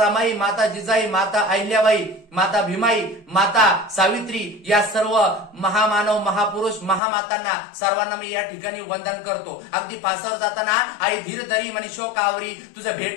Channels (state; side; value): drops out; right; at 7.0 s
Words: माता जिजाई, माता अहिल्याबाई, माता भीमाई, माता सावित्री या सर्व महामानव महापुरुष महामातांना सर्वांना मी या ठिकाणी वंदन करतो. अगदी फासावर जाताना आई धीर धरी म्हणे शोक आवरी, तुझं